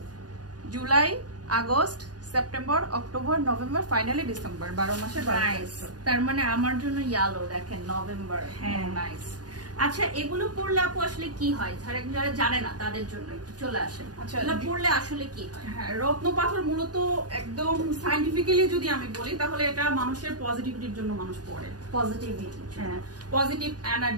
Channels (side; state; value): left; late; 0.69 ms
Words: July, August, September, October, November, finally December. 12 মাসের nice. তার মানে আমার জন্য yellow দেখেন নভেম্বর। হ্যাঁ নাইস। আচ্ছা এগুলো পড়লে আপু আসলে কি হয়? যারা জানে না তাদের জন্য একটু চলে আসেন। আচ্ছা, এগুলো পড়লে আসলে কি হয়? হ্যাঁ, রত্নপাথর মূলত একদম সায়েন্টিফিক্যালি যদি আমি বলি তাহলে এটা মানুষের পজিটিভিটির জন্য মানুষ পড়ে। পজিটিভিটি। হ্যাঁ, পজিটিভ